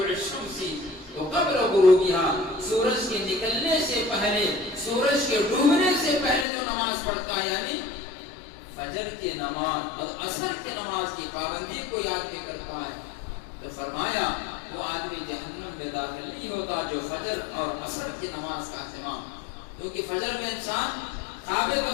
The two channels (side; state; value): right; drops out; at 6.5 s